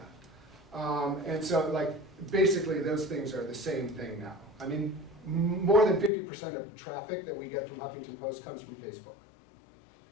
And so basically those things are the same thing now. More than 50% of traffic that we get from Huffington Post comes from Facebook.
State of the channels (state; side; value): drops out; right; at 6.1 s